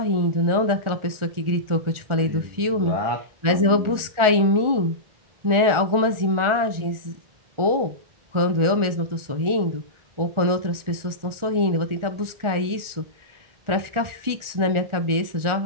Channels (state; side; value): late; left; 1.4 ms